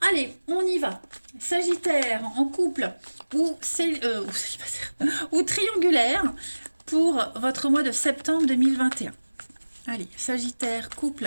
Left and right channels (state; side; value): inverted; both; correlation -1.00